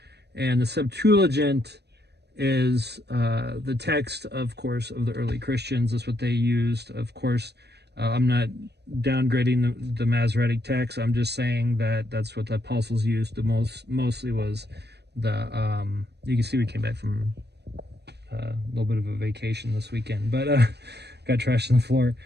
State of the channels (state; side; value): late; left; 0.49 ms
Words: And the Septuagint is the text, of course, of the early Christians. That's what they used. Of course, I'm not downgrading the Masoretic text. I'm just saying that that's what the apostles used. Mostly was the, you can see we came back from a little bit of a vacation this weekend, but got trashed on the floor.